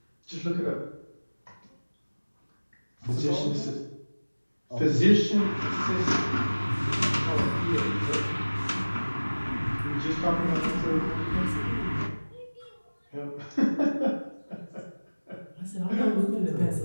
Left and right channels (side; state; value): both; inverted; correlation -1.00